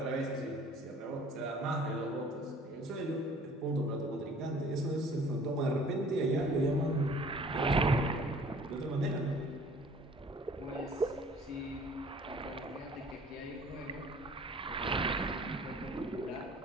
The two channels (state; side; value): normal; both; correlation 0.51